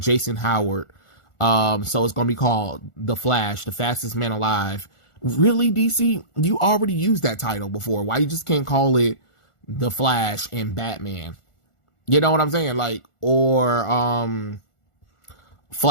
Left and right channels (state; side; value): late; right; 1.4 ms